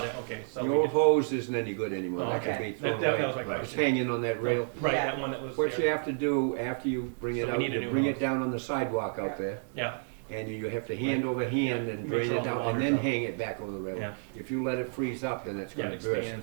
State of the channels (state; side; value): silent; left; digital silence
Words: hose, it, okay, so the we old just, hose isn't any good anymore. Oh, That can okay. be thrown that away. was my Right. It's question. hanging on that rail. Right, Yeah. that one that was What you there. have to do after you bring So it we out, need a you new bring hose. it down on the sidewalk Yeah. out there, Yeah, and you have to hand over hand and Make drain sure all it the down, and water's then out. hang it back over the rail. Yeah. If you let it freeze up, then it's Yeah, gonna it burst.